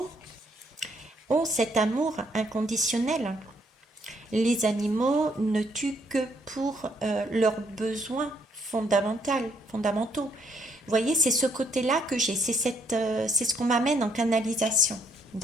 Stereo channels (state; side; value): normal; both; correlation 0.70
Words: ont cet amour inconditionnel. Les animaux ne tuent que pour leurs besoins fondamentaux. Vous voyez, c'est ce côté-là que j'ai, c'est ce qu'on m'amène en canalisation.